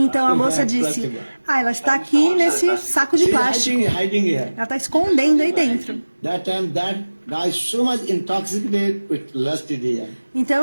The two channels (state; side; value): inverted; both; correlation -1.00